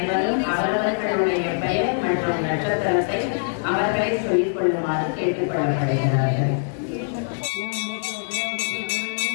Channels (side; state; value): right; silent; 58 dB below the other